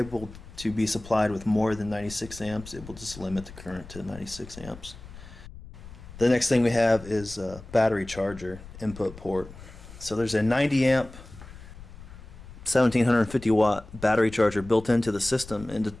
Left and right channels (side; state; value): left; noise; rumble, 16 dB below the sound